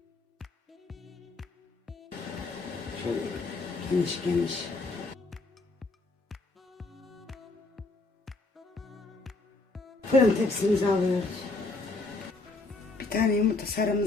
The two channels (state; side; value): quieter; right; 3.3 dB